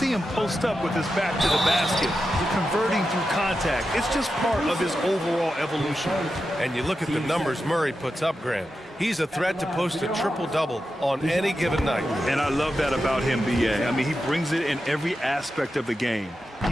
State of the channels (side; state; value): both; normal; correlation 0.90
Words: him post up with his back to the basket, converting through contact. It's just part of his overall evolution. And you look at the numbers Murray puts up, Grant. He's a threat to post a triple-double on any given night. And I love that about him, B.A. I mean, he brings it in every aspect of the game.